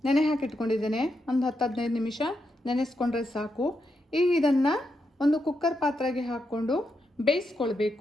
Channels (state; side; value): normal; both; correlation 0.83